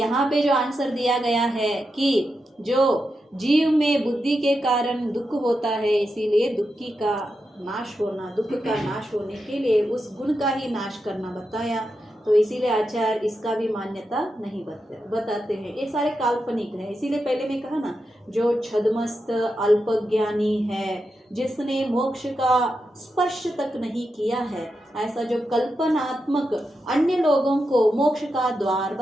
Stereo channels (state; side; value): normal; both; correlation 0.87